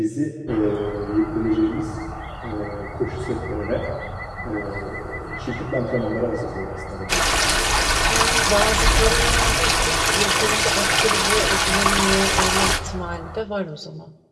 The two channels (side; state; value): both; identical; correlation 1.00